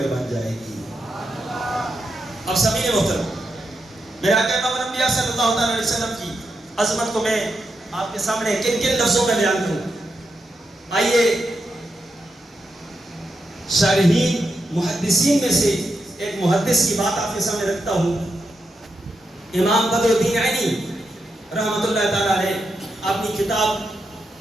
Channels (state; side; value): normal; both; correlation 0.85